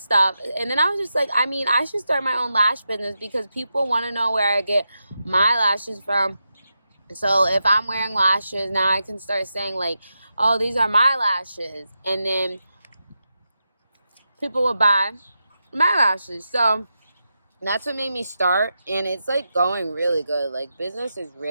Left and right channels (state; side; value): inverted; both; correlation -0.88